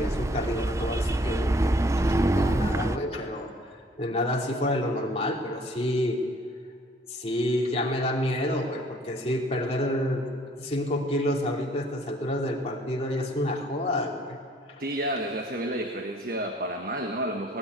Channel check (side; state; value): both; normal; correlation 0.58